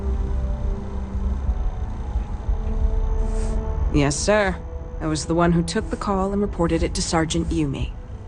Yes, sir. I was the one who took the call and reported it to Sergeant Yumi.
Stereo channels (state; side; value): identical; both; correlation 1.00